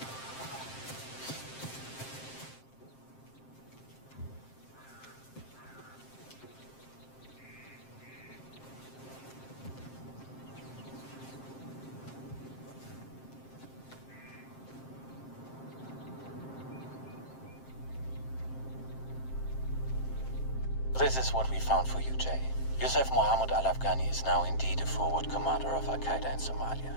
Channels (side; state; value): right; late; 7.6 ms